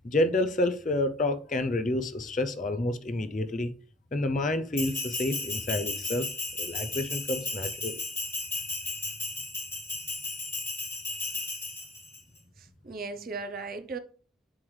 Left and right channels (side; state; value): both; normal; correlation 0.49